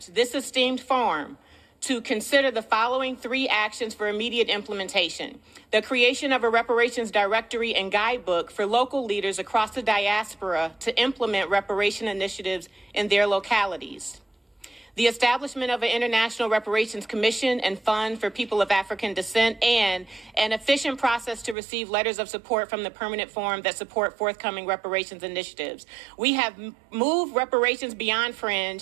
this esteemed forum to consider the following 3 actions for immediate implementation: the creation of a reparations directory and guidebook for local leaders across the diaspora to implement reparation initiatives in their localities; the establishment of an International Reparations Commission and Fund for People of African Descent, and an efficient process to receive letters of support from the Permanent Forum that support forthcoming reparations initiatives. We have moved reparations beyond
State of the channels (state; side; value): drops out; left; at 21.6 s